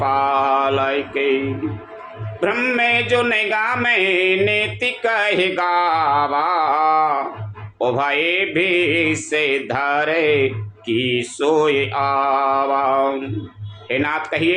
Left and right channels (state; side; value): identical; both; correlation 1.00